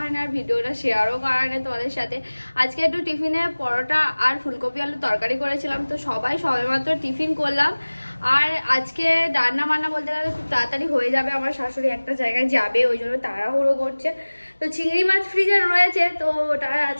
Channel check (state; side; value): inverted; both; correlation -1.00